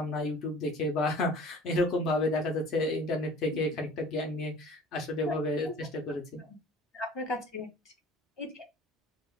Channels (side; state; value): both; normal; correlation 0.46